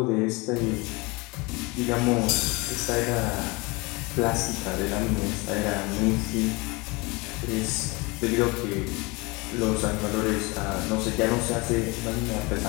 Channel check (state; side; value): quieter; right; 26.0 dB